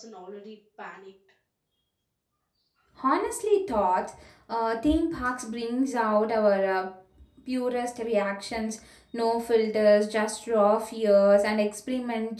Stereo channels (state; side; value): identical; both; correlation 1.00